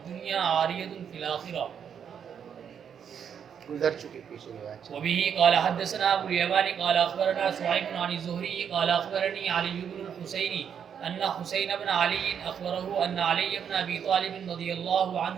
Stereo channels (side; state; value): left; quieter; 7.9 dB